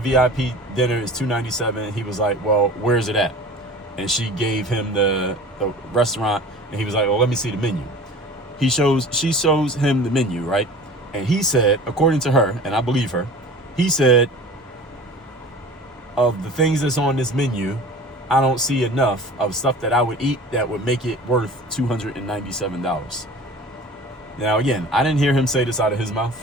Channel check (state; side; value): normal; both; correlation 0.40